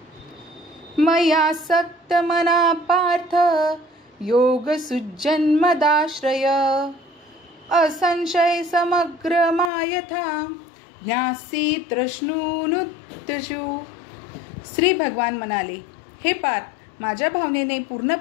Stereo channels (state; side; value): drops out; right; at 9.7 s